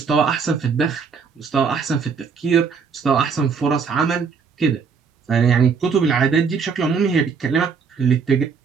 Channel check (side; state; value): left; quieter; 5.7 dB